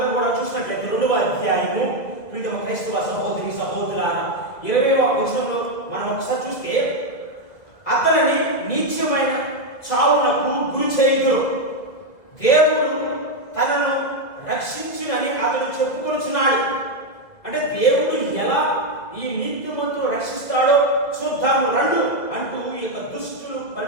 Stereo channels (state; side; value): late; right; 2.0 ms